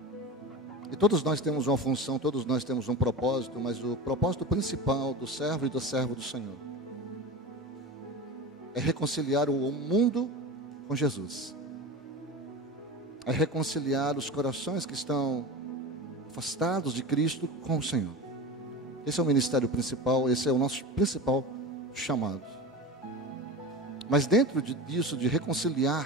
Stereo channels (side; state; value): both; normal; correlation 0.29